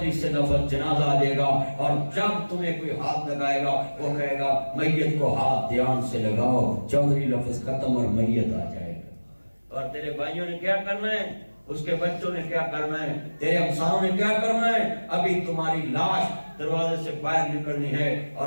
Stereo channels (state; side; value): inverted; both; correlation -1.00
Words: سے لفظ جنازہ آ جائے گا اور جب تمہیں کوئی ہاتھ لگائے گا وہ کہے گا میت کو ہاتھ دھیان سے لگاؤ چودھری لفظ ختم اور میت آ جائے گا اور تیرے بھائیوں نے کیا کرنا ہے اس کے بچوں نے کیا کرنا ہے تیرے ہمسایوں نے کیا کرنا ہے ابھی تمہاری لاش دروازے سے باہر نکلنی ہے اور